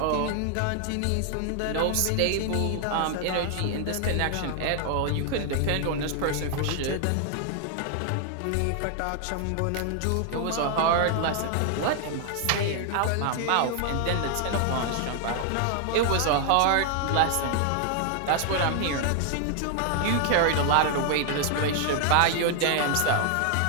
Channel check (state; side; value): different; both; correlation 0.00